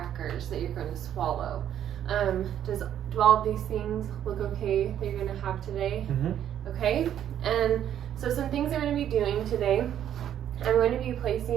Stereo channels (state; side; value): quieter; left; 10.3 dB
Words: that you're going to swallow. Do all of these things look okay that you're going to have today? Mm-hmm. Okay, and so some things I'm going to be doing today, I'm going to be